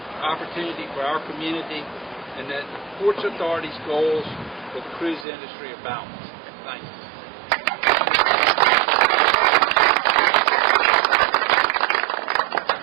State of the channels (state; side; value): drops out; left; at 5.2 s